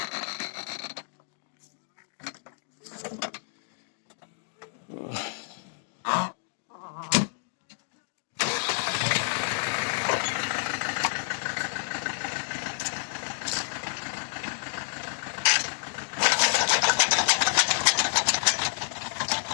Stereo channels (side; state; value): right; silent; digital silence